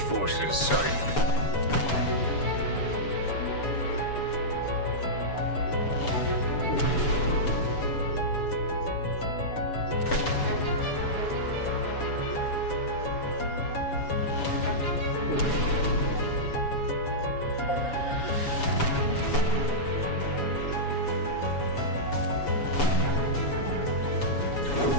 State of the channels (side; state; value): right; late; 7.1 ms